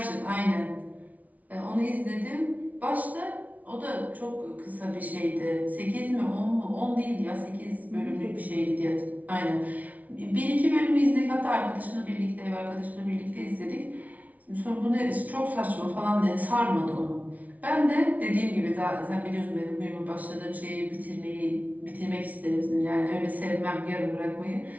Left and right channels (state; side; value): late; left; 0.071 ms